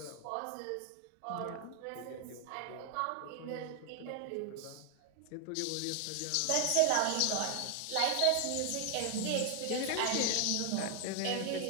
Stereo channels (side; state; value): both; different; correlation 0.00